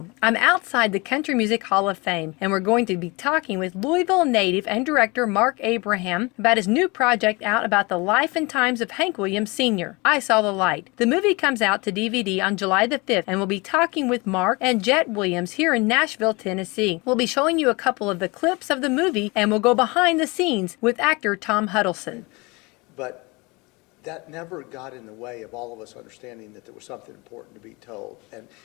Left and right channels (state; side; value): quieter; right; 26.0 dB